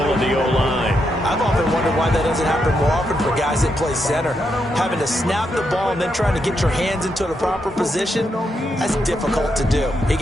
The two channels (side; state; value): both; normal; correlation 0.81